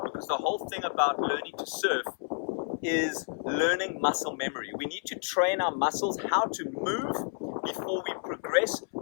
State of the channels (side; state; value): right; silent; 58 dB below the other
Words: because the whole thing about learning to surf is learning muscle memory. We need to train our muscles how to move before we progress